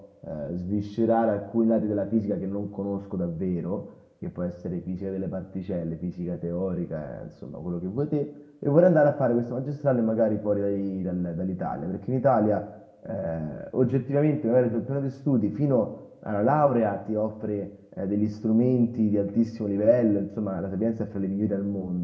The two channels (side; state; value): both; identical; correlation 1.00